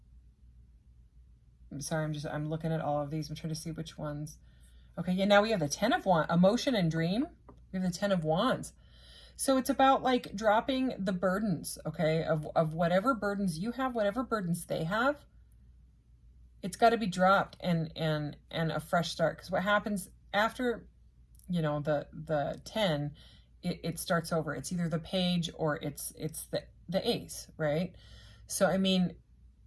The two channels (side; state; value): both; identical; correlation 1.00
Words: sorry, I'm looking at all of these. I'm trying to see which ones. Okay, yeah, now we have the 10 of Wands, emotion and dream. We have the 10 of Wands. So it's about like dropping the burdens, okay, of whatever burdens you have, whatever burdens they have. It's got to be dropped and a fresh start. Because what happens after, you know, the 10, it starts over. It's either the page or it's the ace, right? So, I mean,